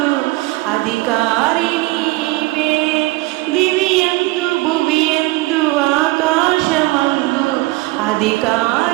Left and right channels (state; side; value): quieter; left; 21.2 dB